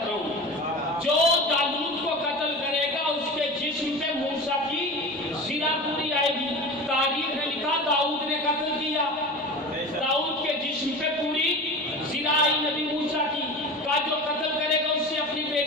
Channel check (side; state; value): both; normal; correlation 0.31